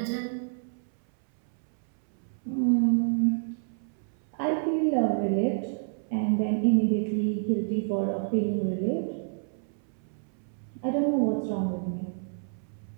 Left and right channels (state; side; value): silent; left; 59 dB below the other